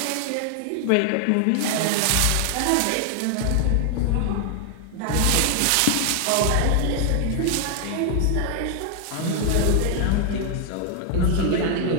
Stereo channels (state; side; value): different; both; correlation 0.00